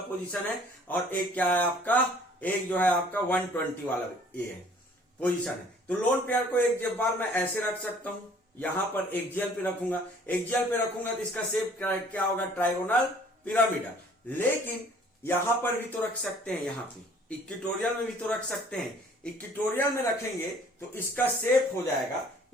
पोजीशन है, और एक क्या है आपका, एक जो है आपका 120 वाला ये है पोजीशन है। तो लोन पेयर को एक बार मैं ऐसे रख सकता हूं, यहां पर एक्सियल पे रखूंगा, एक्सियल पे रखूंगा तो इसका शेप क्या होगा, ट्राइगोनल पिरामिडल। लेकिन यहां पर भी तो रख सकते हैं, यहां पे इक्वेटोरियल में भी तो रख सकते हैं, इक्वेटोरियल में रखेंगे तो इसका शेप हो जाएगा,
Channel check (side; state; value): both; normal; correlation 0.55